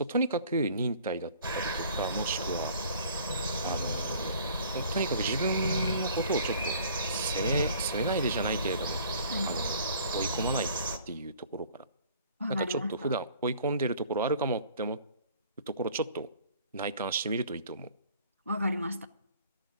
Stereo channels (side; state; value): both; inverted; correlation -0.52